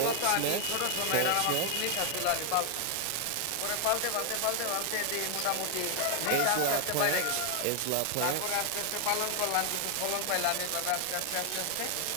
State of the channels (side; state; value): both; different; correlation 0.00